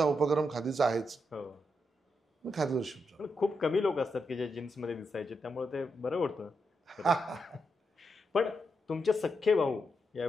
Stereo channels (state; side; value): normal; both; correlation 0.83